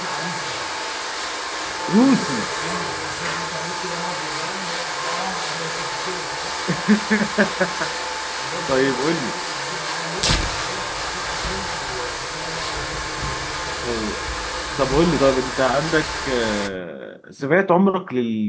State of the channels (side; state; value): both; identical; correlation 1.00